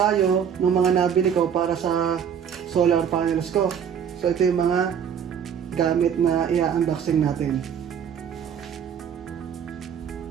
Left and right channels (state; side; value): quieter; left; 8.0 dB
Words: ng mga nabili ko para sa solar panels ko. So ito yung mga gamit na i-unboxing natin.